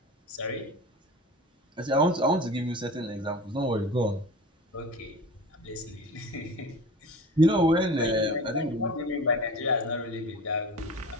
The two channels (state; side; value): normal; both; correlation 0.36